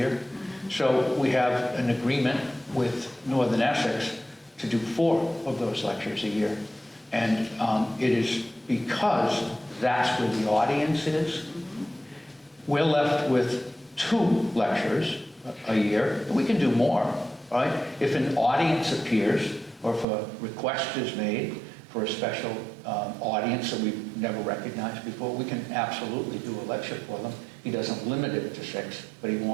Mm-hmm. So we have an agreement with Northern Essex to do 4 of those lectures a year. And it is because that's where the audience is. Mm-hmm. We're left with 2 lectures a year. We can do more, right? If an audience appears or if a request is made for a special audience that we've never recognized before, we can absolutely do a lecture for them. He doesn't limit it to 6, but he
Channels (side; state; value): left; drops out; at 20.1 s